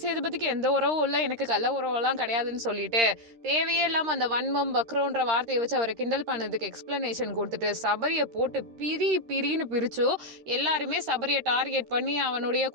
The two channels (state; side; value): late; left; 13 ms